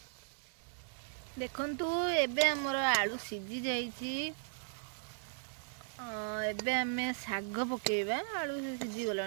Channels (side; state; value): left; silent; digital silence